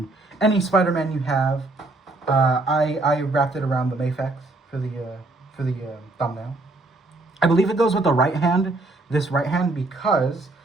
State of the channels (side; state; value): left; quieter; 3.0 dB